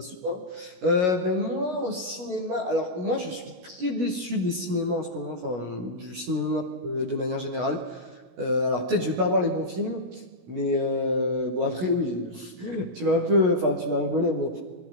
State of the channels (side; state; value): left; late; 16 ms